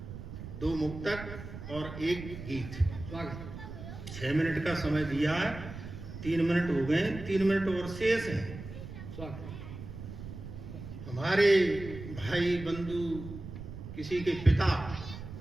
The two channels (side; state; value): right; noise; rumble, 11 dB below the sound